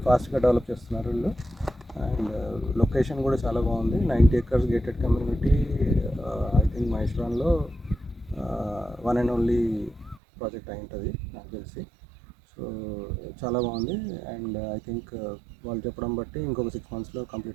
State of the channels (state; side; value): drops out; left; at 10.2 s